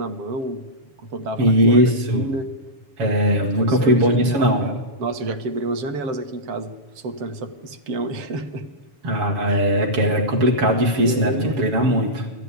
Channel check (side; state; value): left; late; 7.1 ms